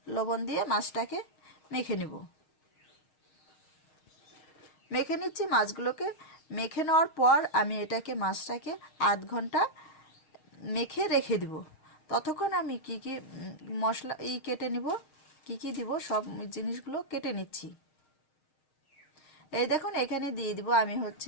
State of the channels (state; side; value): late; right; 6.4 ms